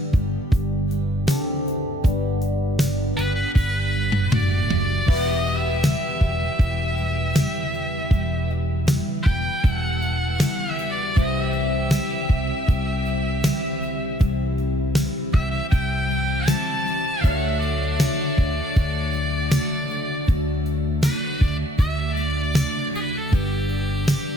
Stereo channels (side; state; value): both; normal; correlation 0.64